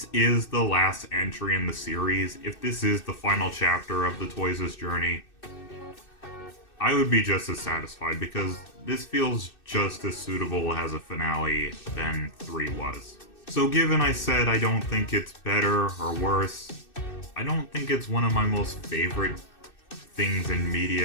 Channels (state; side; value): late; right; 2.6 ms